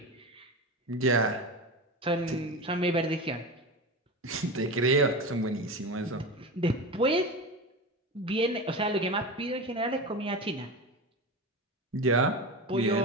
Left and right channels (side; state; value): both; normal; correlation 0.24